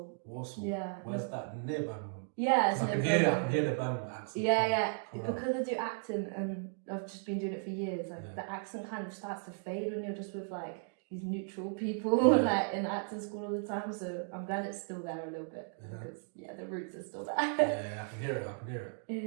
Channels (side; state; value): left; silent; 54 dB below the other